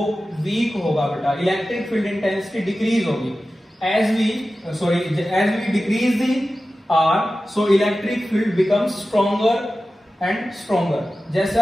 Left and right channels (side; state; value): both; normal; correlation 0.94